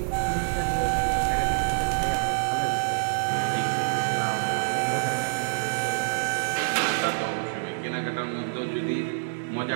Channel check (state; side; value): silent; left; 60 dB below the other